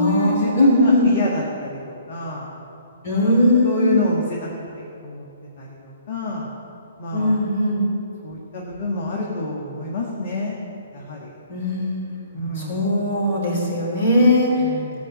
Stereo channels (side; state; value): both; inverted; correlation -0.59